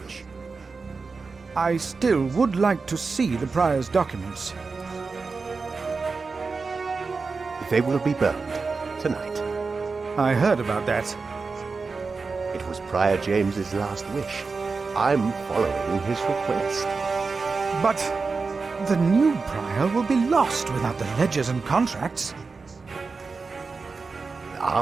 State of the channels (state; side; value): quieter; left; 4.4 dB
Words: I still would like to see the prior's documents. They will be burned tonight. I heard about that. It was Prior James's last wish. I'm following his request. But the new prior will be lost without the ledgers and contracts.